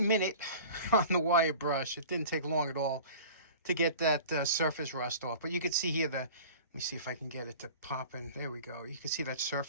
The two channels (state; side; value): inverted; both; correlation -0.41